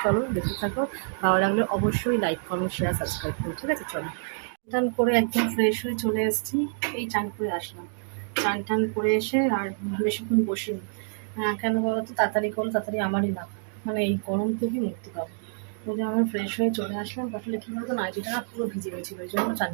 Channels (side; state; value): left; silent; digital silence